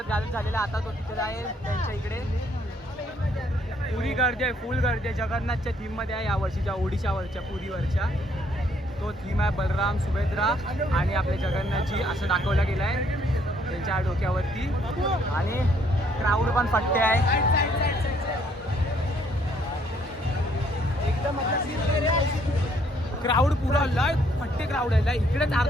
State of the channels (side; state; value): both; normal; correlation 0.67